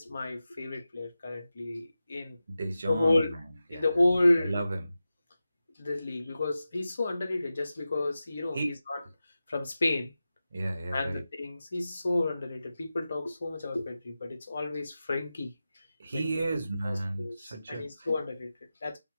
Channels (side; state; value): both; inverted; correlation -0.93